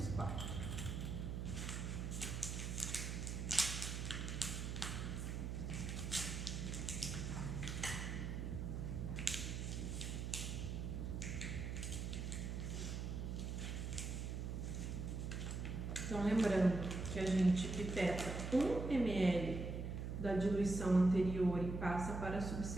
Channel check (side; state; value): right; noise; hum, 3 dB below the sound